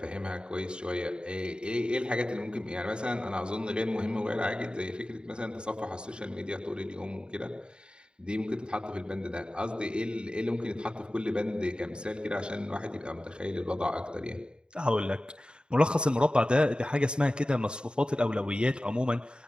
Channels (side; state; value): left; late; 0.050 ms